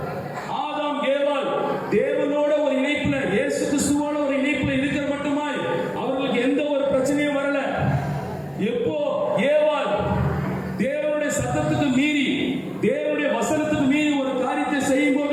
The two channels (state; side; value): identical; both; correlation 1.00